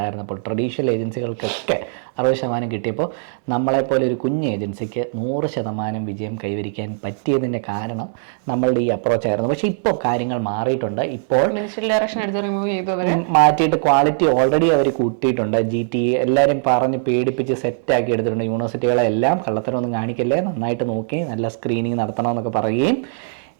ട്രഡീഷണൽ ഏജൻസികൾക്കൊക്കെ 60% കിട്ടിയപ്പോൾ നമ്മളെപ്പോലെ ഒരു കുഞ്ഞ് ഏജൻസിക്ക് 100% വിജയം കൈവരിക്കാൻ പറ്റിയതിൻ്റെ കാരണം നമ്മളുടെ ഈ അപ്രോച്ചായിരുന്നു. പക്ഷേ ഇപ്പോൾ കാര്യങ്ങൾ മാറിയിട്ടുണ്ട്. ഇപ്പോൾ മിനിസ്ട്രിയൽ ഡയറക്ഷൻ എടുത്ത് റിമൂവ് ചെയ്തു, അവർ മാറ്റിയിട്ട് ക്വാളിറ്റി ഓൾറെഡി അവർ കൂട്ടിയിട്ടുണ്ട്. GT എല്ലാവരും പറഞ്ഞ് പേടിപ്പിച്ച് സെറ്റാക്കി എടുത്തിട്ടുണ്ട്. യൂണിവേഴ്സിറ്റികളെല്ലാം കള്ളത്തരമൊന്നും കാണിക്കല്ലേ, നന്നായിട്ട് നോക്കി നല്ല സ്ക്രീനിങ് നടത്തണമെന്നൊക്കെ പറയുകയും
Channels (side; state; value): left; silent; digital silence